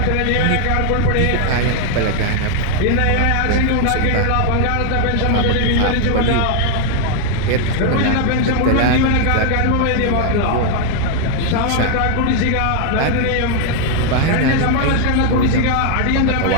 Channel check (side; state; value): both; different; correlation 0.00